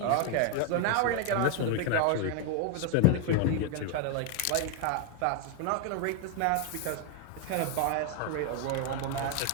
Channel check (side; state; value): both; different; correlation 0.01